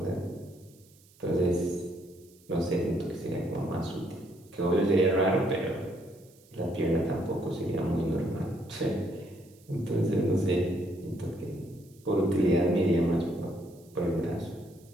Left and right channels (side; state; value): right; noise; hiss, 28 dB below the sound